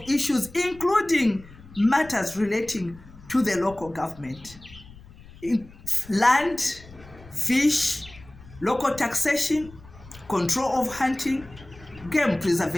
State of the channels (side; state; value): left; noise; rumble, 20 dB below the sound